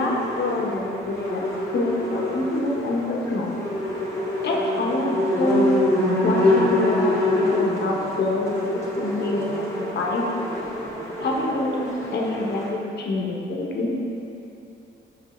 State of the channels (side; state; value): both; normal; correlation 0.54